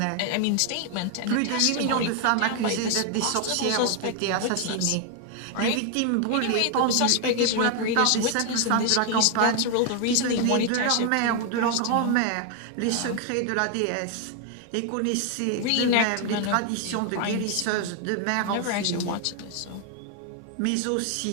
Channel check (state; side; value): different; both; correlation 0.01